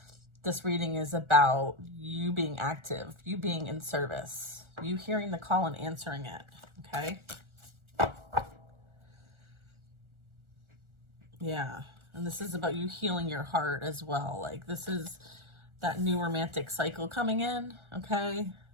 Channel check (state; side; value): late; left; 1.4 ms